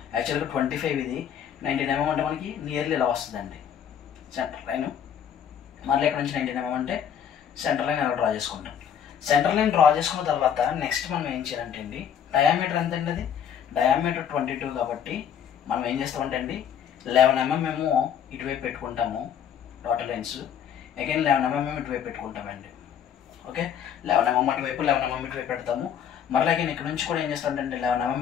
యాక్చువల్గా 25 ఇది, 19 mm అంటే మనకి నియర్లీ ఇలా వస్తుందండి సెంటర్ లైన్. మళ్ళీ ఇక్కడ నుంచి 19 mm అంటే సెంటర్ లైన్ ఎలా డ్రా చేసుకుంటాం. సెంటర్ లైన్ డ్రా చేసుకున్న తర్వాత నెక్స్ట్ మనం ఏం చేయాలంటే అండి, డయామీటర్ ఎంత అండి, అది డయామీటర్ 22 కాబట్టి మనం ఏం చేస్తామంటే అండి 11 mm మేము ఇటువైపు పెట్టుకుంటాము డాటర్ లైన్స్. అగైన్ 11 mm ఇటువైపు పెట్టుకుంటామండి. ఓకే, 11 mm అటువైపు 11 mm ఇటువైపు పెడతాము. మరలా అగైన్ ఇక్కడ నుంచి కూడా ఏం చేస్తామంటే 11 mm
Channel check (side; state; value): right; quieter; 8.7 dB